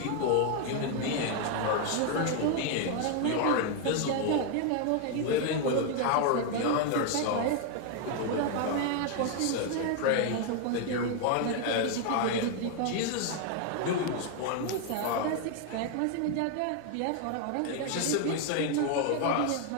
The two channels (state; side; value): different; both; correlation 0.00